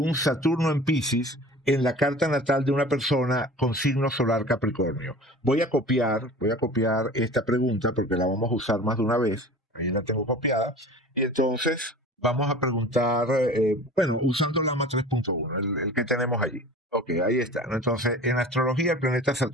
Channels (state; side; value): normal; both; correlation 0.40